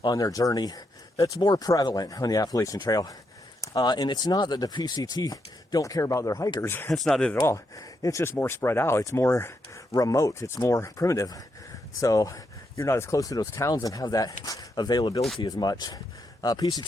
on their journey. That's more prevalent on the Appalachian Trail. And it's not that the PCT don't care about their hikers. That's not it at all. It's just more spread out. It's more remote. It's more primitive. So you're not as close to those towns and have that availability as much.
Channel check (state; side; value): normal; both; correlation 0.81